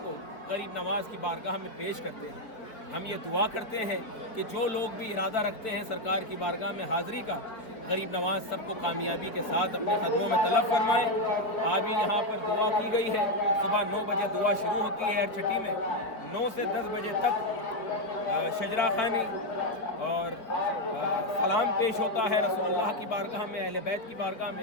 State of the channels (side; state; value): right; late; 4.5 ms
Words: کو غریب نواز کی بارگاہ میں پیش کرتے ہیں۔ ہم یہ دعا کرتے ہیں کہ جو لوگ بھی ارادہ رکھتے ہیں سرکار کی بارگاہ میں حاضری کا، غریب نواز سب کو کامیابی کے ساتھ اپنے قدموں میں طلب فرمائیں۔ ابھی یہاں پر دعا کی گئی ہے، صبح 9 بجے دعا شروع ہوتی ہے ہر چھٹی میں، 9 سے 10 بجے تک شجرہ خوانی اور سلام پیش ہوتا ہے رسول اللہ کی بارگاہ میں، اہل بیت کی بارگاہ